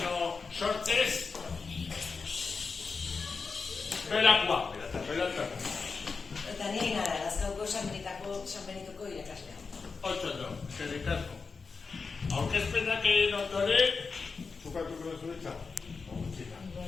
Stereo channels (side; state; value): right; quieter; 4.8 dB